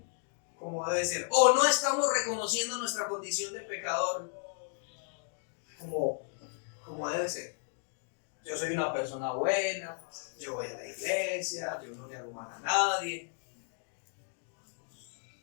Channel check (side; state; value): right; silent; 55 dB below the other